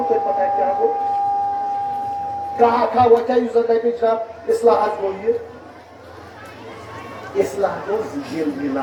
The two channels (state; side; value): identical; both; correlation 1.00